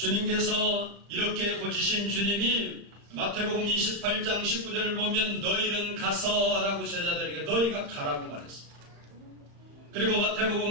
이렇게 고치신 주님이 마태복음 28장 19절을 보면 너희는 가서 라고 제자들에게 너희가 가라고 말했습니다. 그리고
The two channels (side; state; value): left; late; 35 ms